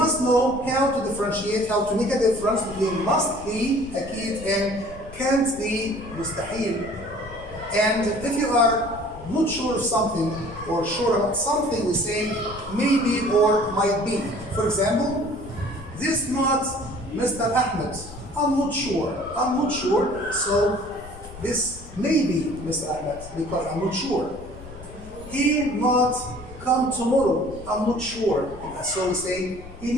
know how to differentiate, how to make a difference between must be أكيد and can't be مستحيل. And if you are not sure of something or sure about something, we say maybe or might be. For example, this not Mr. Ahmed. I'm not sure. So this may be Mr. Ahmed because I'm not sure. He not come tomorrow. I'm not sure. So we say he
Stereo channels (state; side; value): noise; left; rumble, 16 dB below the sound